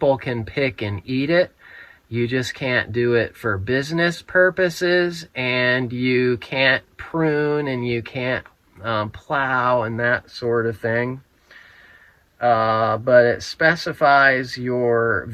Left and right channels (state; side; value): identical; both; correlation 1.00